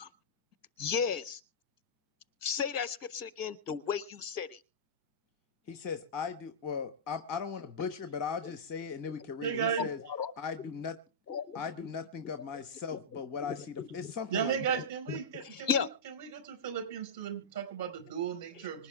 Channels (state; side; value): late; right; 1.6 ms